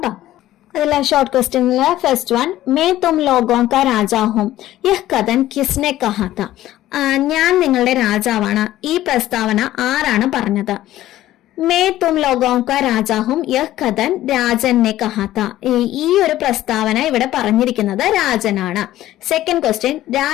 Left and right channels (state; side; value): quieter; right; 14.3 dB